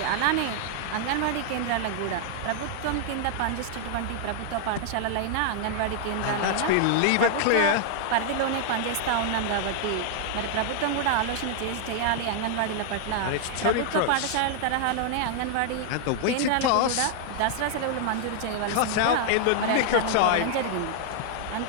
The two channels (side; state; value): both; different; correlation -0.01